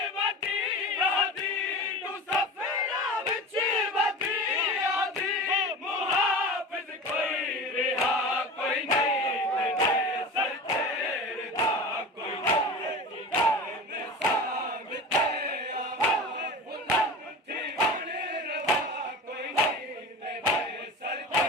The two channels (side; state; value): both; normal; correlation 0.33